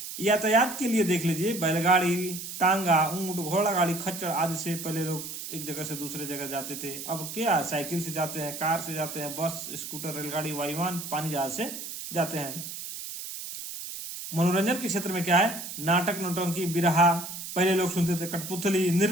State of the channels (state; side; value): noise; right; hiss, 8 dB below the sound